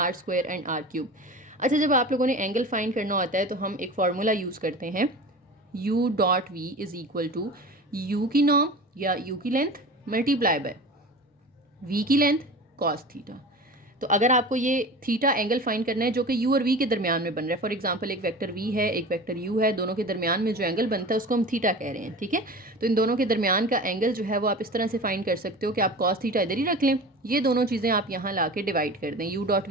and R³। अच्छा, जब आप लोगों ने एंगल फाइंड करना होता है तो हम एक फार्मूला यूज़ करते हैं U.V is equal to U की नॉर्म या U की लेंथ मल्टीप्लाई बाय V की लेंथ कॉस थीटा। तो अगर आपको ये थीटा एंगल फाइंड करना है जो कि U और V के दरमियान में बन रहा है, फॉर एग्जांपल एक वेक्टर V है एक वेक्टर U है, दोनों के दरमियान में जो एंगल बनता है उसको हम थीटा कह रहे हैं। ठीक है, तो इन दोनों के दरमियान का एंगल जो है वो आप इस तरह से फाइंड कर सकते हो कि आप कॉस थीटा इधर ही रख लें, ये दोनों चीज़ें आप यहाँ ला के डिवाइड कर दें।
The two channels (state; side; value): normal; both; correlation 0.34